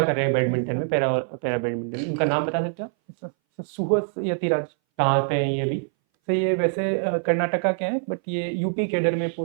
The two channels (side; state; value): left; silent; 60 dB below the other